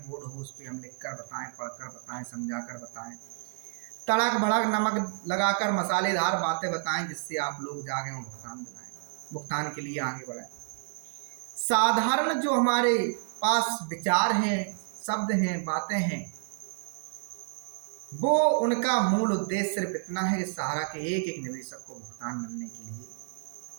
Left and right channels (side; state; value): left; silent; digital silence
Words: बोर्ड हो उस पर हम लिख कर बताएं, पढ़कर बताएं, समझा कर बताएं, तड़क भड़क नमक लगाकर मसालेदार बातें बताएं जिससे आप लोग जागे और भुगतान दिलाएं, भुगतान के लिए आगे बढ़ाएं। साधारण जो हमारे पास विचार हैं, शब्द हैं, बातें हैं, वो उनका मूल उद्देश्य सिर्फ इतना है कि सहारा के एक एक निवेशक को भुगतान मिलने के लिए